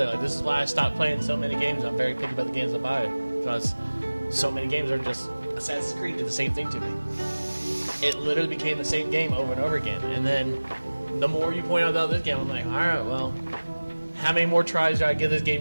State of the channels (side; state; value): both; inverted; correlation -1.00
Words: Like, this is why I stopped playing so many games. I'm very picky about the games I buy because so many games are just Assassin's Creed did the same thing to me. It literally became the same game over and over again. And then the more you point out this game, I'm like, all right, well, how many more tries do I give this game